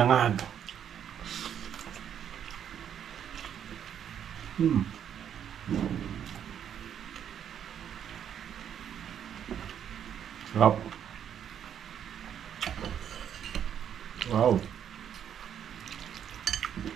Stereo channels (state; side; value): quieter; left; 9.1 dB